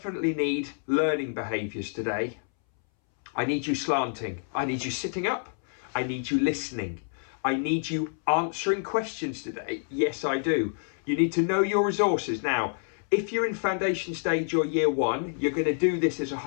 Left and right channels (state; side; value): silent; right; 59 dB below the other